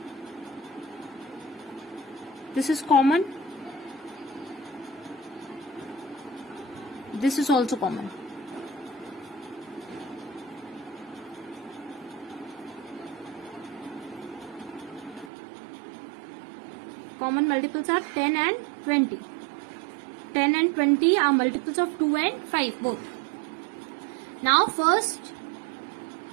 This is common. This is also common. Common multiples are 10 and 20. 10 and 20 are multiples of 2 and 5 both. Now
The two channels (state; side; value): drops out; left; at 15.3 s